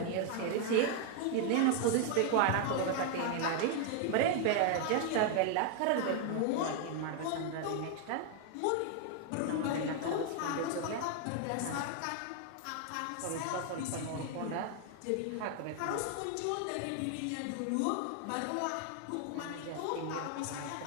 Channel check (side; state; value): both; different; correlation 0.00